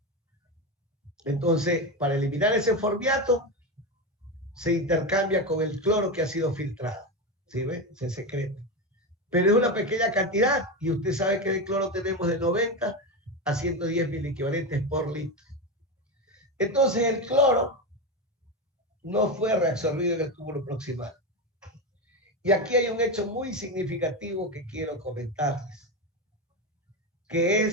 Entonces, para eliminar ese formiato, se intercambia con el cloro que ha sido filtrado. ¿Sí ve? Se secreta. Pero es una pequeña cantidad, y usted sabe que de cloro tenemos de 90 a 110 miliequivalentes por litro. Entonces, el cloro no fue reabsorbido en el túbulo proximal. Y aquí hay un hecho muy significativo que quiero comentarles, que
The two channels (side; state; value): both; normal; correlation 0.16